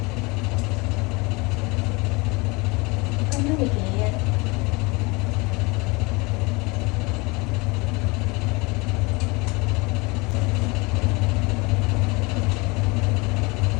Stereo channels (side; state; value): right; quieter; 26.2 dB